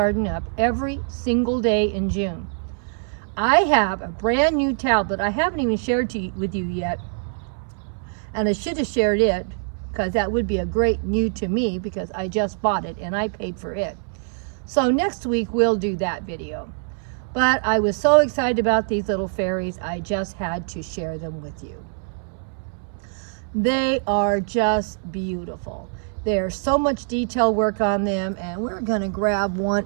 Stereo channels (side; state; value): left; silent; 63 dB below the other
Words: up every single day in June. I have a brand new tablet I haven't even shared with you yet. And I should have shared it because that would be a great new to me because I just bought it and I paid for it. So next week we'll do that video. But I was so excited about these little fairies, I just had to share them with you. They are just beautiful. There's so much detail work on them, and we're gonna grab one